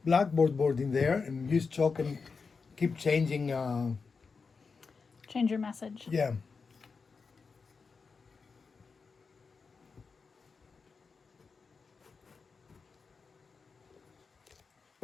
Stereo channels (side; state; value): right; quieter; 4.9 dB